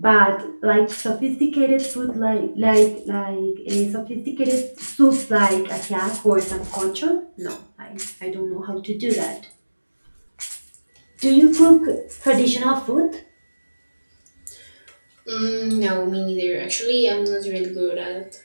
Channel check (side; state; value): both; inverted; correlation -1.00